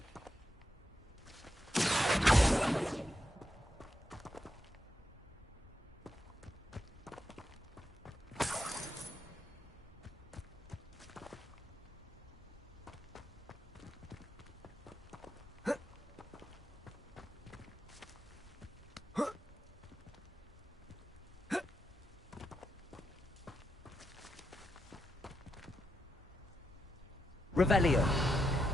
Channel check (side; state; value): both; normal; correlation 0.84